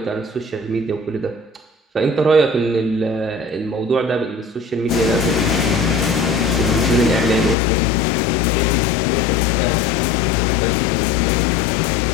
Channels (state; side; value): drops out; right; at 7.6 s